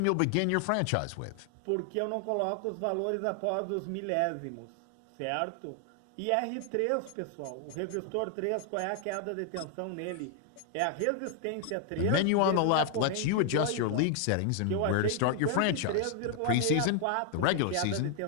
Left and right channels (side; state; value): both; different; correlation 0.00